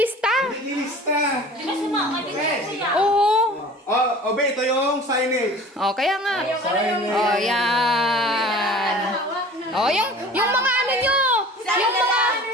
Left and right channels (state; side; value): normal; both; correlation 0.43